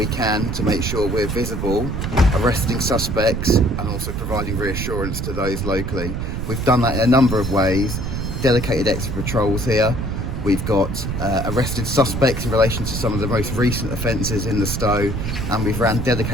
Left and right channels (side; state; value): right; noise; rumble, 3 dB below the sound